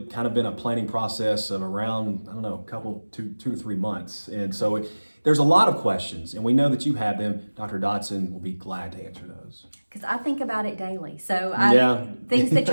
kind of been a planning process of around, I don't know, two to 3 months. And so there's a lot of questions, and we know that you have them. Dr. Dodson will be glad to answer those. Because I think about it daily. So things that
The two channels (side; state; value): both; inverted; correlation -1.00